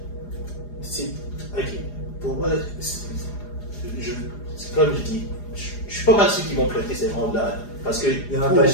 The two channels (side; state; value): right; late; 4.9 ms